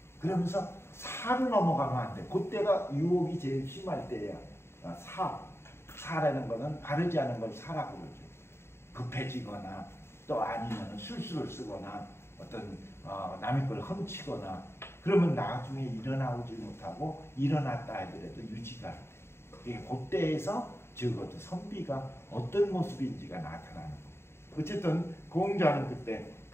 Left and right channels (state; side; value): late; right; 0.12 ms